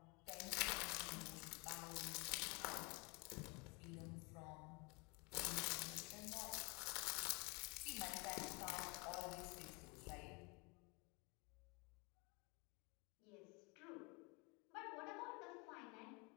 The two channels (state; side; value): quieter; right; 29.6 dB